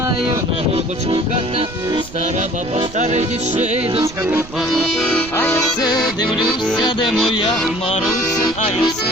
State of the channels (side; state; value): right; noise; rumble, 17 dB below the sound